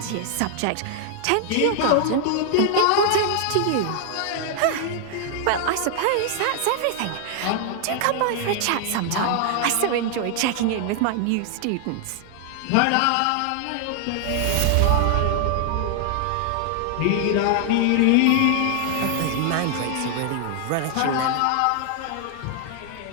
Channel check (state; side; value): different; both; correlation 0.00